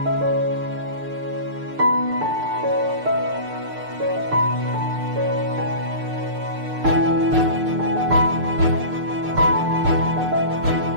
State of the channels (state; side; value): late; left; 6.6 ms